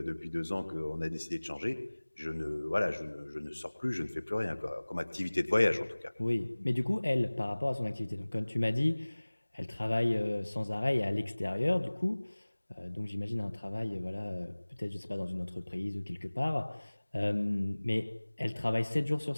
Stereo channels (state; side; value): inverted; both; correlation -1.00